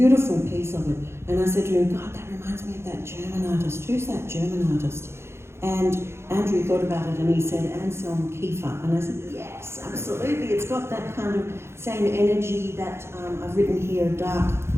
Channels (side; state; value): left; late; 0.12 ms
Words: piece of it, and I said to him, God, that reminds me of that German artist. Who's that German artist? And Andrew thought about it and he said, Anselm Kiefer. And I said, yes, absolutely. It's got that kind of same energy that I've written here, a